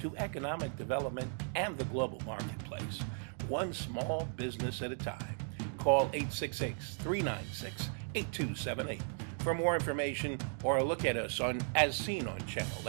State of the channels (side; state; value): left; silent; 54 dB below the other